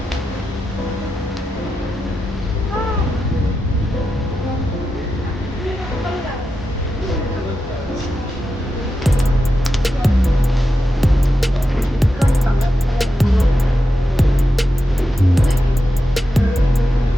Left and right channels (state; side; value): normal; both; correlation 0.89